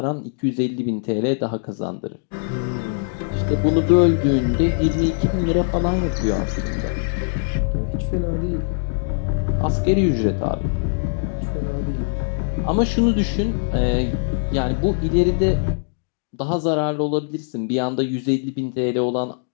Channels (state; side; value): silent; right; digital silence